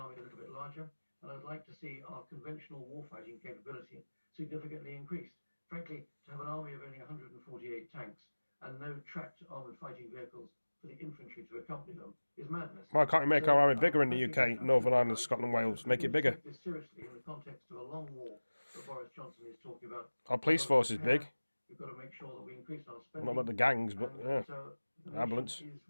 a little bit larger, and I'd like to see our conventional warfighting capability significantly increased. Frankly, to have an army of only 148 tanks and no tracked armoured fighting vehicles for the infantry to accompany them is madness. Why can't you make our army bigger in the UK, Northern Ireland, Scotland, Wales? Make it bigger. Take this seriously in the context of a long war that Boris Johnson is talking about. Our police force is big. We've got to make sure that we increase our spending. Not about the gangs, but yeah. Ambulance,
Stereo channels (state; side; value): inverted; both; correlation -1.00